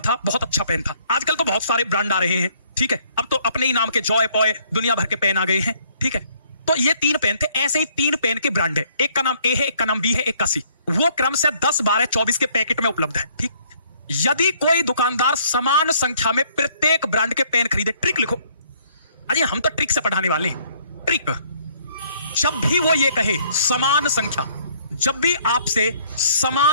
बहुत अच्छा पेन था। आजकल तो बहुत सारे ब्रांड आ रहे हैं, ठीक है। अब तो अपने ही नाम के जॉय पॉय दुनिया भर के पेन आ गए हैं, ठीक है। तो ये 3 पेन थे, ऐसे ही 3 पेन के ब्रांड है। एक का नाम A है, एक का नाम B है, एक का C। वो क्रम से 10 12 24 के पैकेट में उपलब्ध है, ठीक। यदि कोई दुकानदार समान संख्या में प्रत्येक ब्रांड के पेन खरीदे, ट्रिक लिखो। अरे हम तो ट्रिक से पढ़ाने वाले हैं। ट्रिक, जब भी वो ये कहे समान संख्या, जब भी आपसे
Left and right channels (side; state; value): both; inverted; correlation -0.63